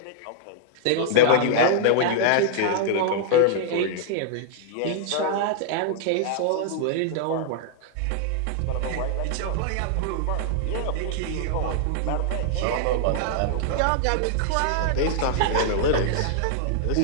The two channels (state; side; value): different; both; correlation -0.01